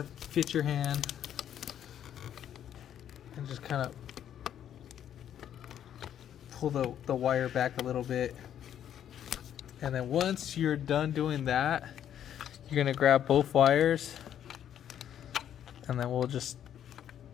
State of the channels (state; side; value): quieter; right; 10.0 dB